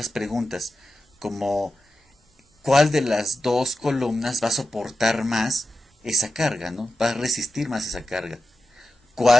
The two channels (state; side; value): normal; both; correlation 0.92